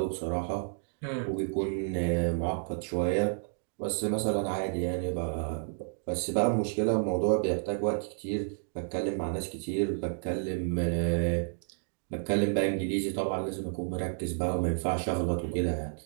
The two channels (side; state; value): left; silent; digital silence